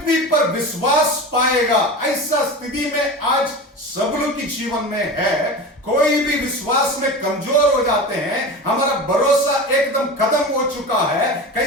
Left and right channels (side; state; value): both; normal; correlation 0.29